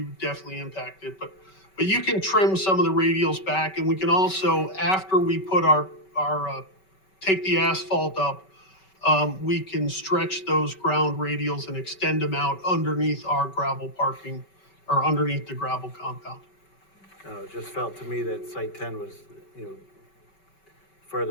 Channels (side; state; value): right; late; 5.2 ms